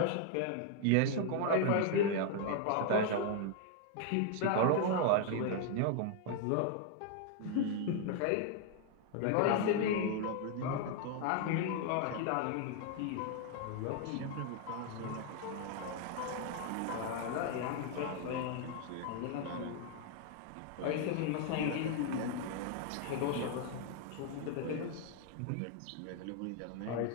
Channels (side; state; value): both; different; correlation 0.00